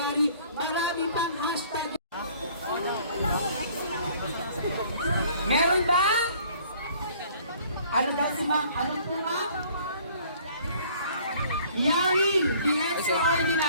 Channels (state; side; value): inverted; both; correlation -0.55